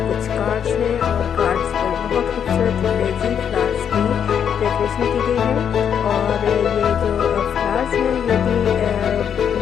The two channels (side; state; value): right; quieter; 8.2 dB